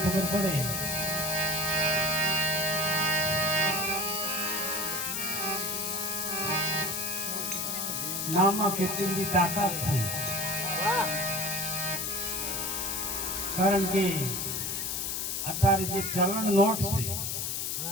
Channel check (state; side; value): noise; left; hiss, 1 dB below the sound